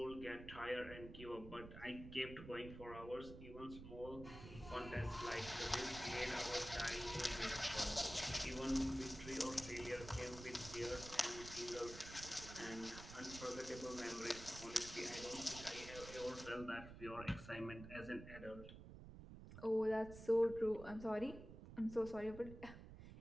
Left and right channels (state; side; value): noise; right; rumble, 12 dB below the sound